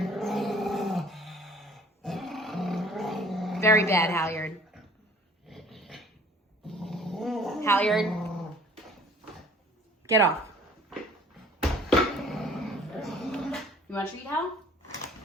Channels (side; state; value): both; normal; correlation 0.53